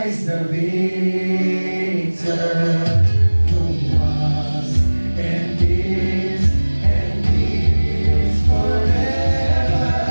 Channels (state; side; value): inverted; both; correlation -1.00